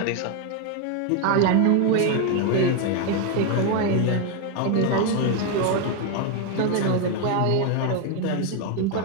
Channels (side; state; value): both; different; correlation 0.01